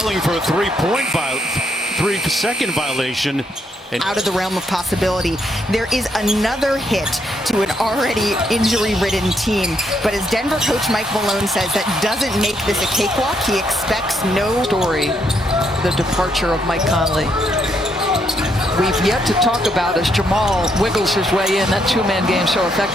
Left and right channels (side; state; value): both; normal; correlation 0.75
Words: for a three-second violation. And out of the realm of possibility. There is another hit to an already injury-ridden team. But as Denver coach Mike Malone says, that doesn't make this a cakewalk. He expects no story, the departure of Mike Conley. We've yet to talk about, as Jamal wiggles his way in, that two-man game so